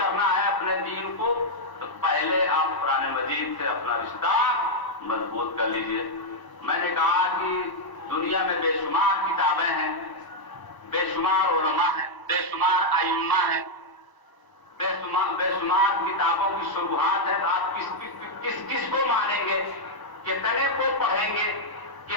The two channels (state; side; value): late; right; 1.0 ms